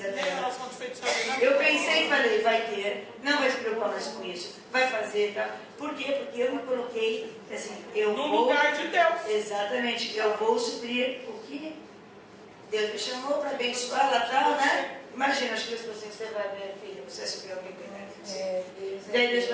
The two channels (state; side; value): identical; both; correlation 1.00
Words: Nem dela. oração de feitiçaria, não. Eu pensei e falei, vai ter, não vai se preocupar mais com isso, vai fazer, tá? Por quê? Porque eu me coloquei, assim, eu No vou... lugar de Deus. Exatamente, eu vou suprir o que Deus me chamou para abençoar lá tal, né? Imagina, acho que Deus falou assim, você vai ver, filha, você vai suprir alguém bem grande. Daí Deus